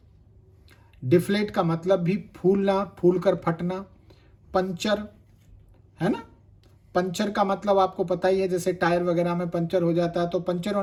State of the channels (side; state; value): both; identical; correlation 1.00